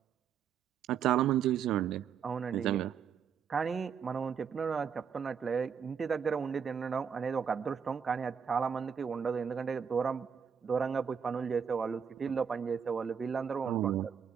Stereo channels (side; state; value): left; quieter; 7.1 dB